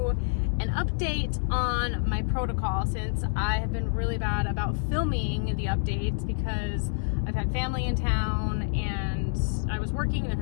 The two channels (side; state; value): right; silent; digital silence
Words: an update on my protocol since I have been really bad about filming the updates because I've had family in town and I was working and I've